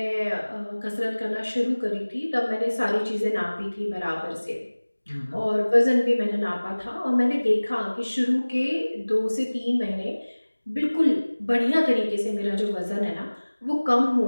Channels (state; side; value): inverted; both; correlation -1.00